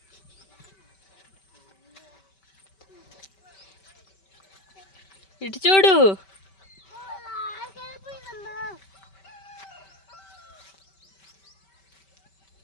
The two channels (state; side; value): late; right; 5.2 ms